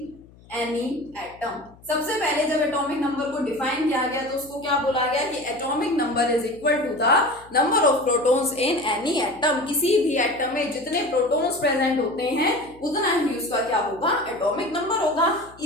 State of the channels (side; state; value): left; noise; hum, 25 dB below the sound